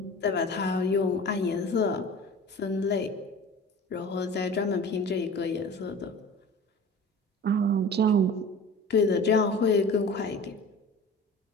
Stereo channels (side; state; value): both; normal; correlation 0.39